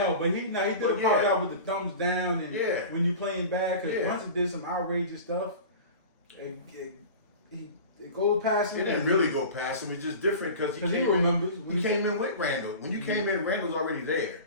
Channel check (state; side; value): inverted; both; correlation -0.35